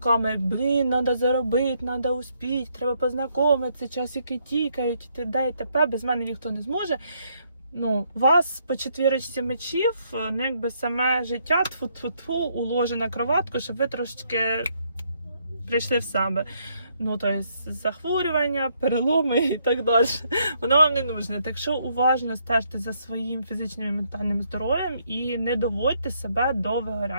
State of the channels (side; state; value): both; inverted; correlation -0.72